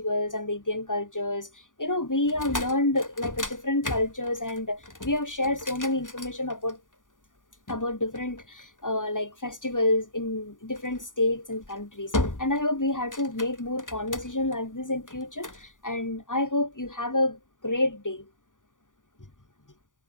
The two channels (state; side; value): late; right; 0.88 ms